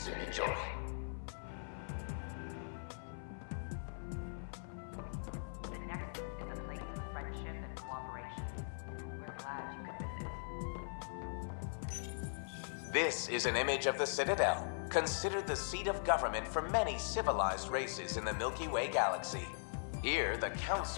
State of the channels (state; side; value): silent; right; 51 dB below the other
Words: enjoy. The Nexus is a place of friendship and cooperation. We're glad you could visit. This is an image of the Citadel, considered the seat of government for many civilized races in the Milky Way galaxy. Here, the